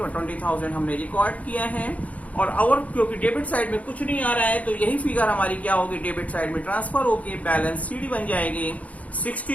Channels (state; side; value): late; right; 0.069 ms